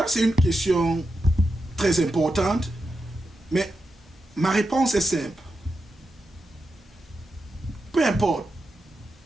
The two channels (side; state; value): both; normal; correlation 0.88